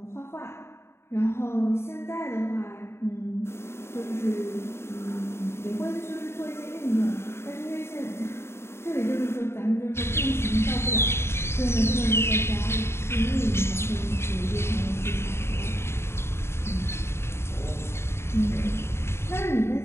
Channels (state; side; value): late; right; 0.12 ms